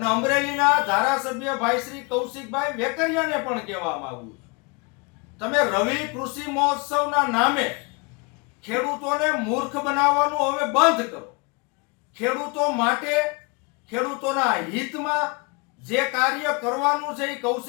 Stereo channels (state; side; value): quieter; right; 30.5 dB